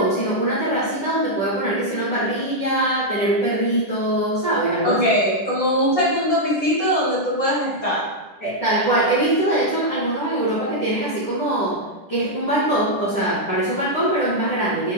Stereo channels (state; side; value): late; right; 10 ms